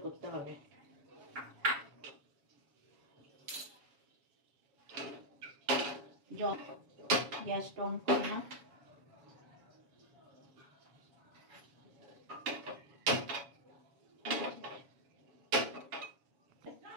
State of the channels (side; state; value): left; late; 7.2 ms